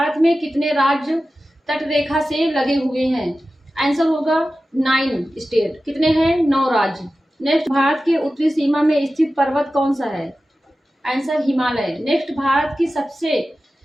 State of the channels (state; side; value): normal; both; correlation 0.94